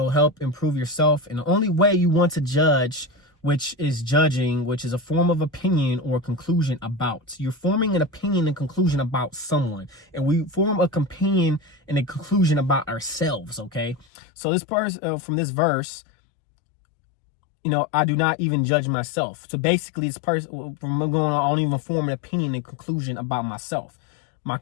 help improve yourself. And the only way you want to judge, which is judging, which is a form of opinion or conclusion about. You're forming an opinion and conclusion about someone. And we form a opinion and a conclusion about ourselves, okay? So this part from this verse, I do not even judge myself. So basically, this person, from going on, I don't even form an opinion and conclusion about myself. My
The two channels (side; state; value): right; drops out; at 14.1 s